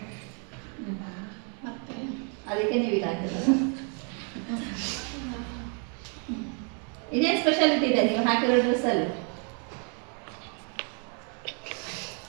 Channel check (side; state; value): left; quieter; 39.5 dB